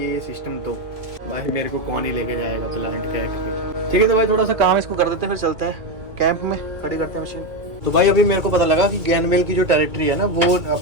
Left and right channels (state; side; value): late; left; 2.3 ms